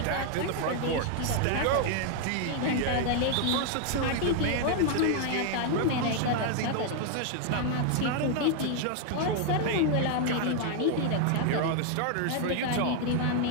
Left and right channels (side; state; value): both; different; correlation 0.00